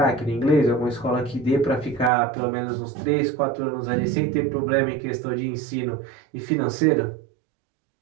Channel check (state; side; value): drops out; left; at 2.1 s